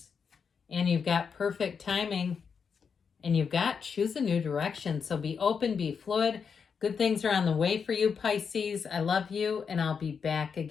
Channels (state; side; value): quieter; right; 6.2 dB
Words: And you've got perfect timing. And you've got choose a new direction. So be open, be fluid. Good things are on the way for you, Pisces. I love you, and I'll be back